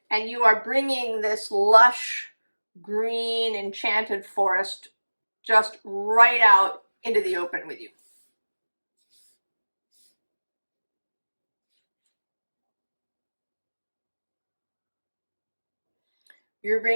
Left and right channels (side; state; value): both; inverted; correlation -1.00